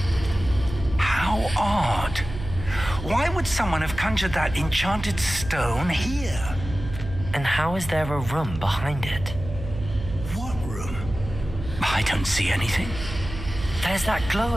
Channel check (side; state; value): right; noise; hum, 9 dB below the sound